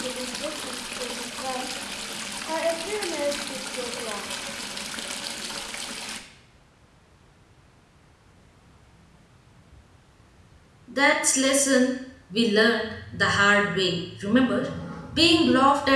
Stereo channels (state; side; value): identical; both; correlation 1.00